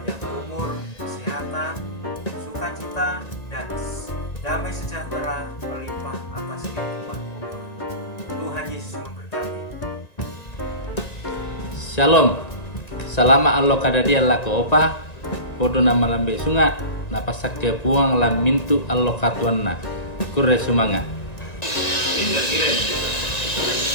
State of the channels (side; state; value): right; late; 1.9 ms